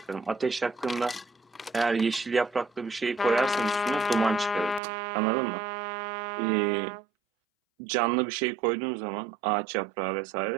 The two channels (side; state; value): left; drops out; at 4.8 s